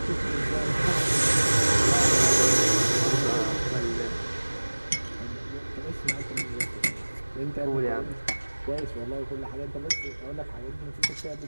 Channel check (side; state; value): both; inverted; correlation -1.00